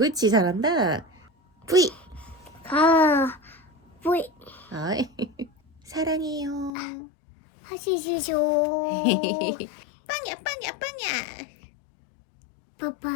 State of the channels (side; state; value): right; drops out; at 6.7 s